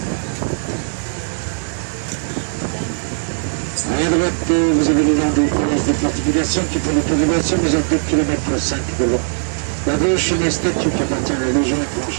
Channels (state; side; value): silent; left; 67 dB below the other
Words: À droite, vous avez le long des connaisses des fortifications qui font l'autorisation, vous êtes 2 km 5 de long. La gauche, une statue qui appartient à la Légion